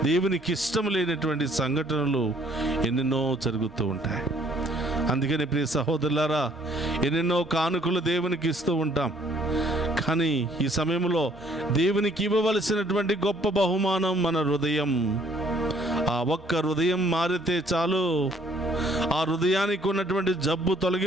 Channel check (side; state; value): both; normal; correlation 0.62